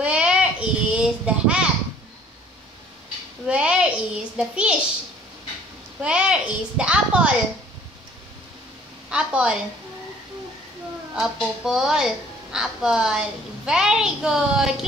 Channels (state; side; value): normal; both; correlation 0.55